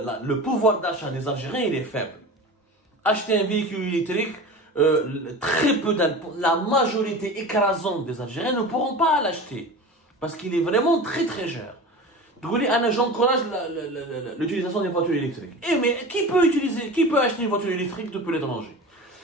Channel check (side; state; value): both; normal; correlation 0.33